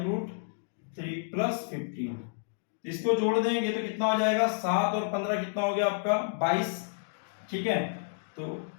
प्लस 15, इसको जोड़ देंगे तो कितना हो जाएगा 7 और 15 कितना हो गया आपका 22। ठीक है, तो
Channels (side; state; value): right; silent; digital silence